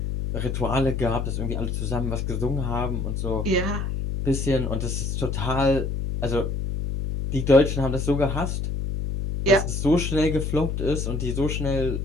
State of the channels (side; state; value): left; noise; hum, 2 dB below the sound